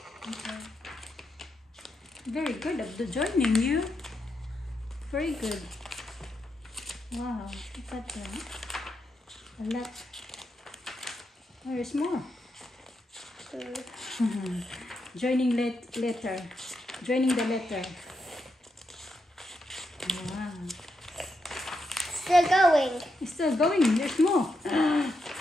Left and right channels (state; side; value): normal; both; correlation 0.83